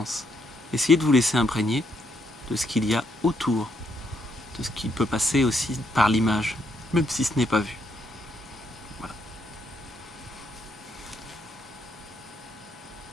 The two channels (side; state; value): both; normal; correlation 0.75